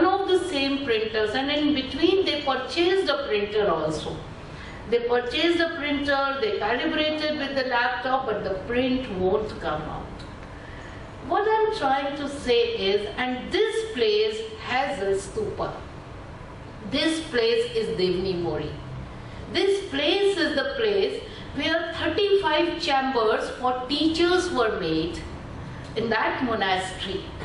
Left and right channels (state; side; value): identical; both; correlation 1.00